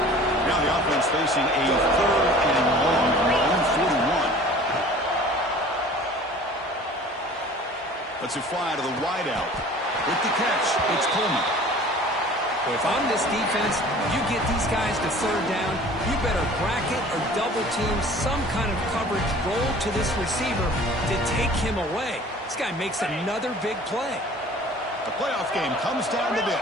Now the offense facing a third and long from their own 41. Let's it fly to the wideout. With the catch, it's Coleman. If I'm this defense, you get these guys to third down, you better bracket or double team some kind of coverage roll to this receiver to take him away. This guy makes another big play. The playoff game comes down to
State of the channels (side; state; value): both; normal; correlation 0.46